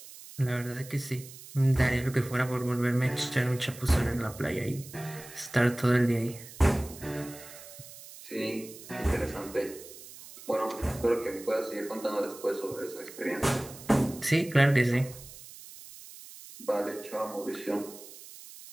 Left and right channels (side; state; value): right; noise; hiss, 16 dB below the sound